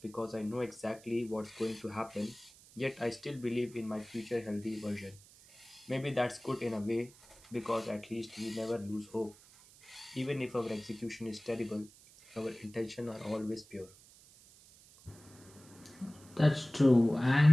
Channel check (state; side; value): noise; right; hiss, 23 dB below the sound